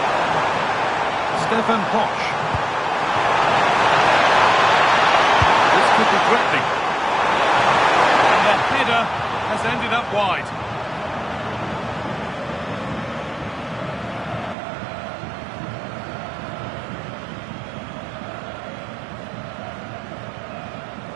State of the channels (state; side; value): drops out; left; at 14.6 s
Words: Stefan Posch. This could be threatening. And the header has ended up wide.